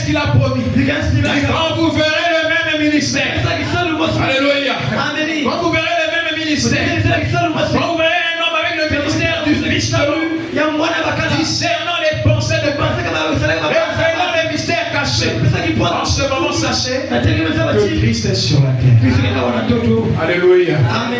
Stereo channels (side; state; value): both; identical; correlation 1.00